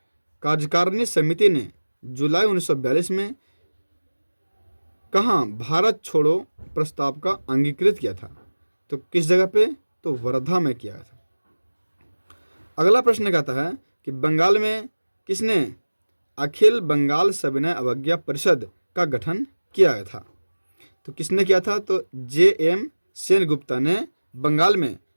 कार्यकारिणी समिति ने जुलाई 1942 में कहाँ भारत छोड़ो प्रस्ताव का अंगीकृत किया था। तो किस जगह पे। तो वर्धा में किया था। अगला प्रश्न कहता है कि बंगाल में किसने अखिल बंगाल सविनय अवज्ञा परिषद का गठन किया था। तो किसने किया था। तो JM सेनगुप्ता ने बंगाल में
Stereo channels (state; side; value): inverted; both; correlation -1.00